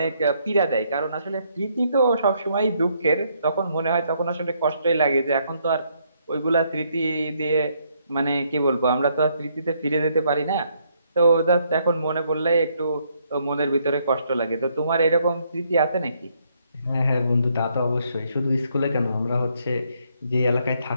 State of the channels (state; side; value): inverted; both; correlation -0.72